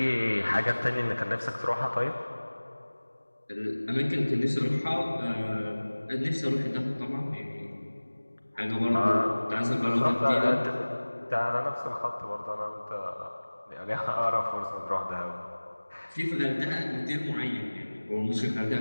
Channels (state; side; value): inverted; both; correlation -1.00